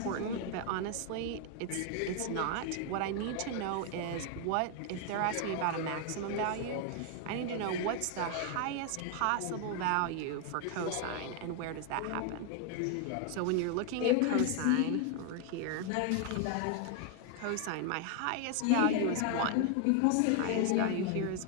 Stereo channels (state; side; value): different; both; correlation 0.00